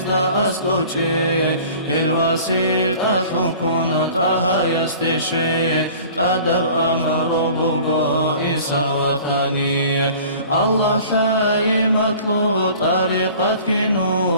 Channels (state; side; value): inverted; both; correlation -0.46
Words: أسكوشي الوسيط أثنكون تاها يستشي تدب أمر بوغو إنسا وطني الله ثاي مطلوب طريقة